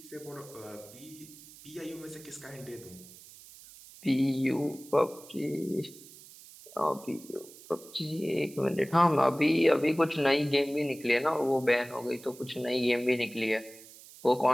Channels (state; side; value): noise; right; hiss, 19 dB below the sound